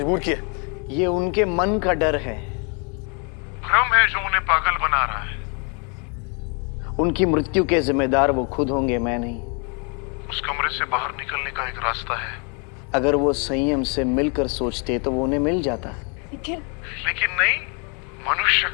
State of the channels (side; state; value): right; quieter; 35.9 dB